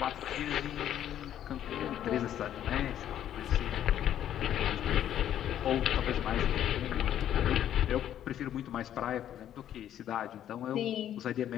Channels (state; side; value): quieter; right; 10.9 dB